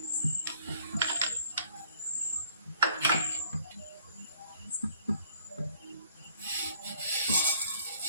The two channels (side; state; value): both; inverted; correlation -0.59